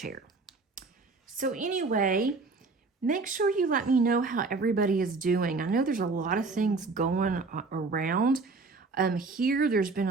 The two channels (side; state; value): left; quieter; 3.9 dB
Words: So anyway, make sure you let me know how everybody is doing. I know there's a lot of things going around. Here, there's been